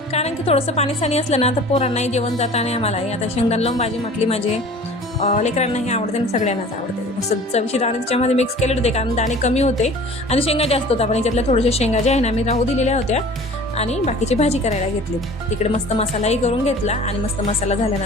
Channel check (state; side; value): normal; both; correlation 0.45